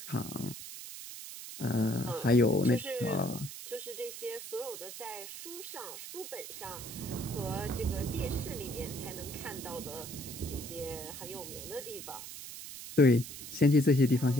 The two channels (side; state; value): right; noise; hiss, 10 dB below the sound